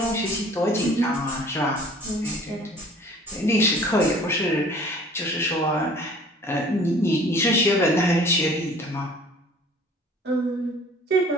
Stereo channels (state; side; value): normal; both; correlation 0.50